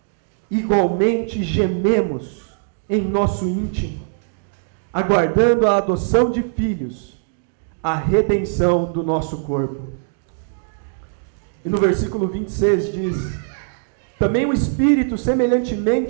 igualmente gememos em nosso íntimo, aguardando a adoção de filhos, a redenção do nosso corpo. E no versículo 26 diz: também o Espírito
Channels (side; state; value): left; silent; digital silence